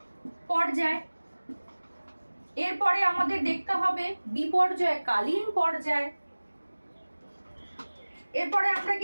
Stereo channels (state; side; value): inverted; both; correlation -1.00